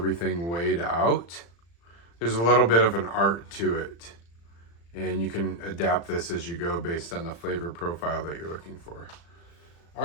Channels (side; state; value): right; late; 35 ms